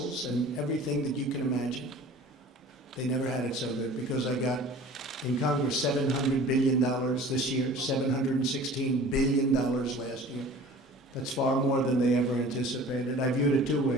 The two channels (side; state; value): both; normal; correlation 0.44